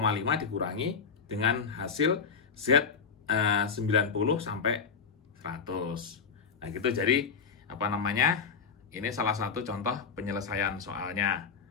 dikurangi dengan hasil Z 90 sampai 100. Nah, gitu. Jadi apa namanya? Ini salah satu contoh penyelesaian soalnya.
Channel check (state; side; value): quieter; right; 5.9 dB